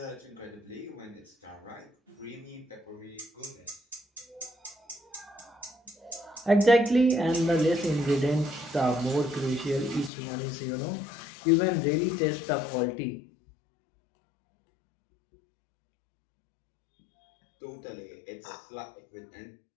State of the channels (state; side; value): drops out; right; at 10.1 s